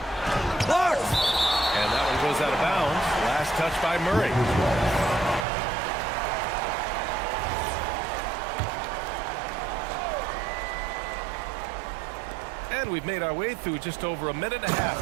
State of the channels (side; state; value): left; drops out; at 5.5 s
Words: Blocked! And that one goes out of bounds. Last touch by Murray. And we've made our way through just over a minute and a